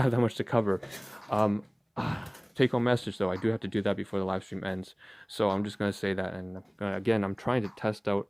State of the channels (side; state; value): both; identical; correlation 1.00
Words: that much to cover. Take home message though, I do have to do that before the live stream ends, so I'm just going to say that. And again, I'm trying to test out